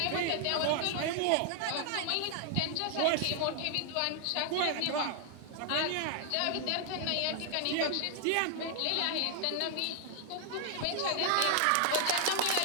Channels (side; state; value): both; different; correlation 0.00